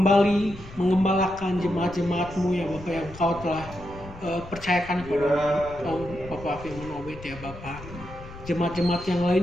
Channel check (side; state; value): left; noise; rumble, 15 dB below the sound